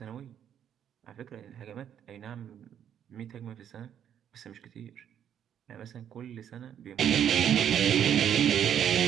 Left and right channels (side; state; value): left; quieter; 9.4 dB